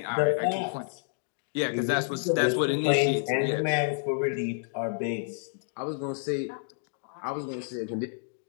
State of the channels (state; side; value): silent; right; digital silence